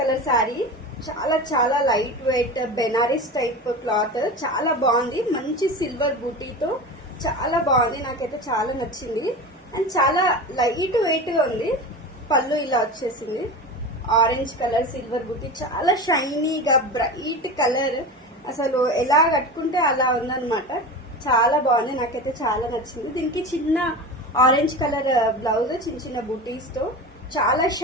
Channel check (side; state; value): both; normal; correlation 0.29